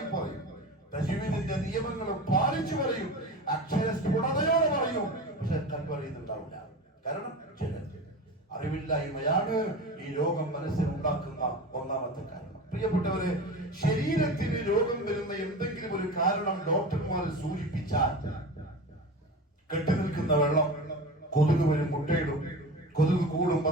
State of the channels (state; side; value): normal; both; correlation 0.30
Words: പറയും, തജ്വീദിന്റെ നിയമങ്ങളും പാലിച്ചു പറയും, അക്ഷരസ്ഫുടതയോടെ പറയും, പക്ഷെ കൽബ് അറിയുന്നുണ്ടാവില്ല. കാരണം അറിവില്ലായ്മയാണ് ഈ രോഗം മനസ്സിലുണ്ടാക്കുന്ന ഒന്നാമത്തെ കാരണം. പ്രിയപ്പെട്ടവരെ, ശരീരത്തിന് രോഗം വരുന്ന എന്തെങ്കിലും ഒരു കാരണം ഡോക്ടർമാർ സൂചിപ്പിച്ചാൽ, കെട്ടി നിൽക്കുന്ന വെള്ളം, കൊതുക് വരും, മുട്ടയിടും, കൊതുക് കൂടും,